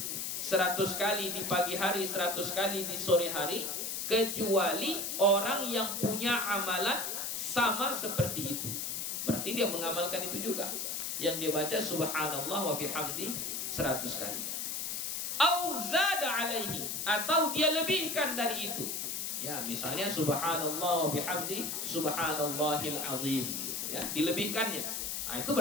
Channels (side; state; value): left; noise; hiss, 3 dB below the sound